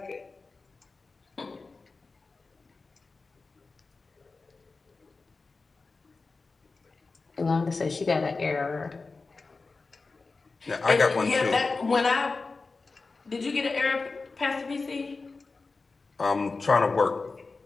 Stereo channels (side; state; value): right; quieter; 4.0 dB